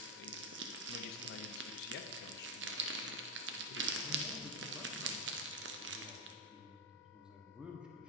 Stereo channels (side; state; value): both; normal; correlation 0.05